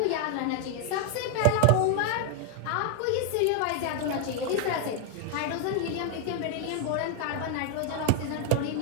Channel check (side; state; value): both; different; correlation 0.00